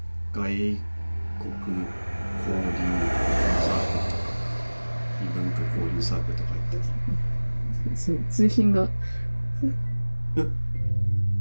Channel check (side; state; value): both; inverted; correlation -1.00